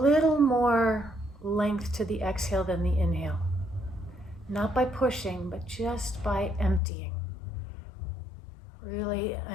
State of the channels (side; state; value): right; drops out; at 6.8 s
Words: more length to the exhale than the inhale. Not by pushing, but just by emptying. Really